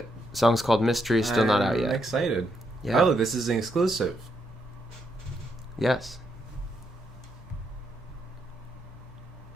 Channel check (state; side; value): normal; both; correlation 0.78